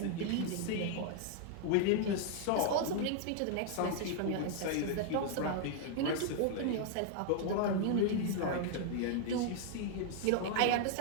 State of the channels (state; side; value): different; both; correlation 0.00